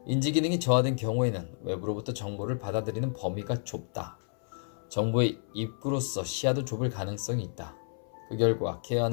인지기능이 저하된 경우에는 외부로부터 정보를 받아들이는 범위가 좁다. 정보의 입구로서 시야도 좁을 가능성이 있다. 그 결과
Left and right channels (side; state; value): right; silent; 58 dB below the other